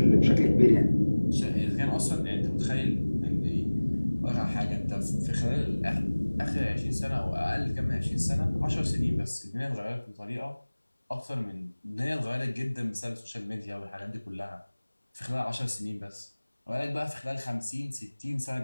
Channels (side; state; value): both; inverted; correlation -1.00